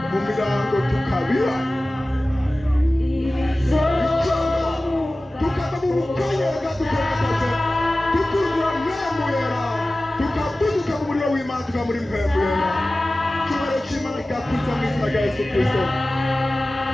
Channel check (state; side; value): normal; both; correlation 0.97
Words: mu mirango tukabira tukava mu bukonyega tugaragaze tukuzura mwemuyera tukabuduka mu muriro w'Imana tuka muri mwemuyera cyubahiro cy'Imana kigakuza mu izina rya Yesu Kristo.